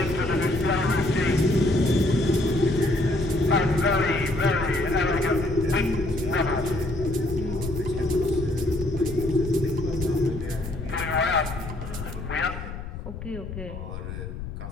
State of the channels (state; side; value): noise; left; rumble, 9 dB below the sound